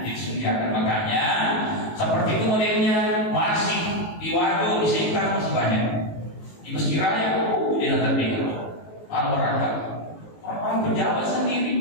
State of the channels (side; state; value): right; late; 19 ms